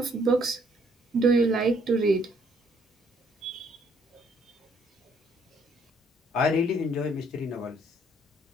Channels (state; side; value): normal; both; correlation 0.66